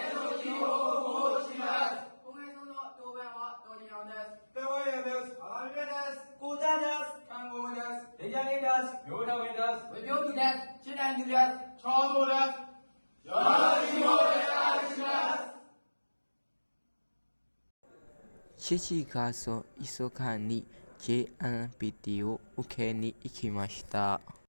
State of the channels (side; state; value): both; inverted; correlation -1.00